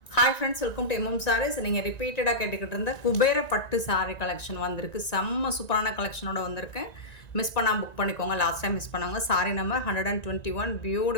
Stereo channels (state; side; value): late; right; 1.9 ms